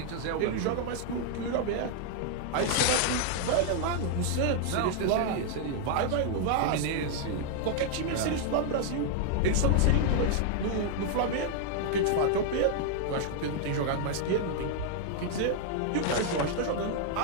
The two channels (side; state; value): both; different; correlation 0.00